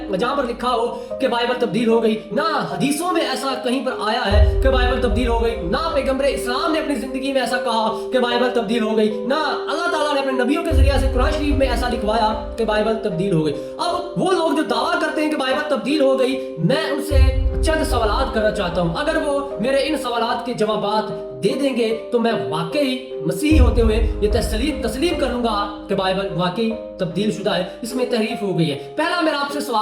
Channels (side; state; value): both; identical; correlation 1.00